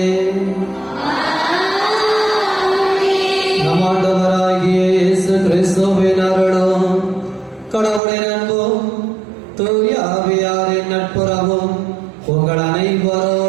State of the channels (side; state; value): left; drops out; at 8.0 s